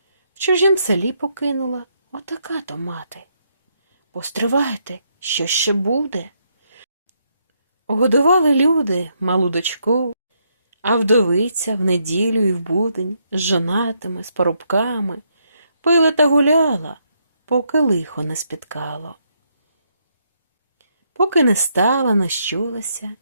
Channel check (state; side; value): inverted; both; correlation -0.76